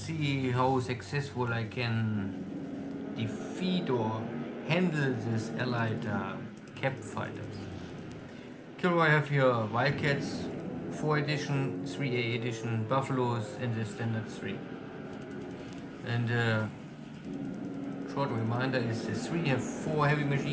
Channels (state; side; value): identical; both; correlation 1.00